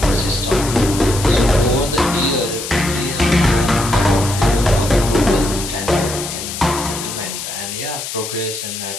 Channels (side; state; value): left; noise; hiss, 7 dB below the sound